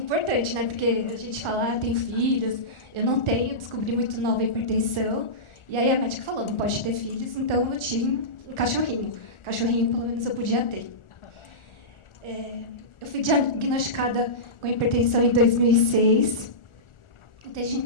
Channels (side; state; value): right; late; 1.4 ms